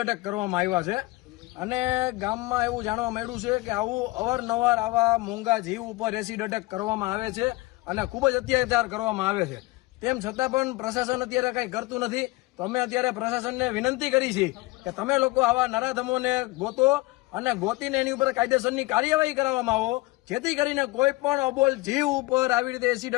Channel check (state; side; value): quieter; right; 21.6 dB